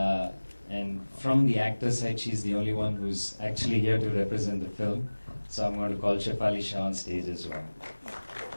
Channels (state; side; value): inverted; both; correlation -1.00